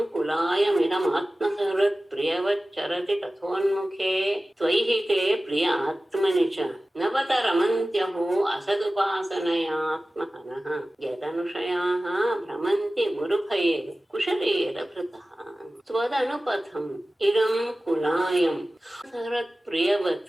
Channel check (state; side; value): normal; both; correlation 0.96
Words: ಕುಲಾಯಮಿದಮಾತ್ಮಸಹೃತ್ ಪ್ರಿಯವಚ್ಚರತಿ ತಥೋನ್ಮುಖೇ ತ್ವೈಹಿತೆ ಪ್ರಿಯ ಆತ್ಮನಿ ಚ ನವತ ರಮಂತ್ಯಹೋ ಅಸದುಪಾಸನಯಾತ್ಮಹನಃ ಯದನುಷಯಾಃ ಭ್ರಮಂತಿ ಗುರುಭಯೇ ಕುಶಲೇರ ಭೃತಃ. ತ್ವದನುಪಥಂ ಇದಂ ಕುಲಾಯಂ ಸಹೃತ್